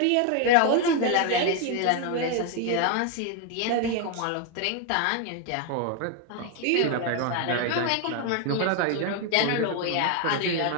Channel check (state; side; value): different; both; correlation 0.01